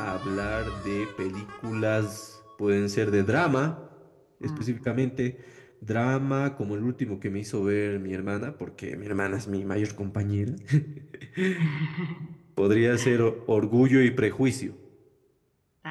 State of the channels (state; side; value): identical; both; correlation 1.00